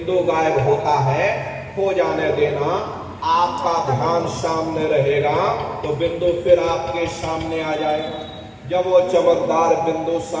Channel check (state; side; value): identical; both; correlation 1.00